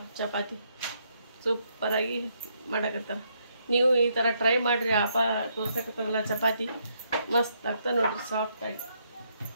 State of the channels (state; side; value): inverted; both; correlation -0.74